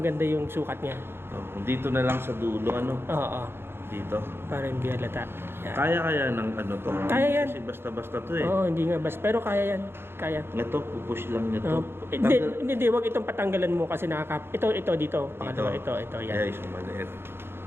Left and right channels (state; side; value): late; left; 0.11 ms